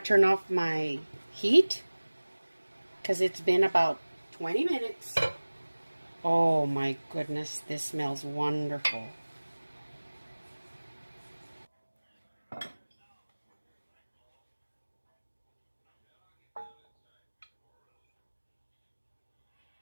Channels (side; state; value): both; inverted; correlation -1.00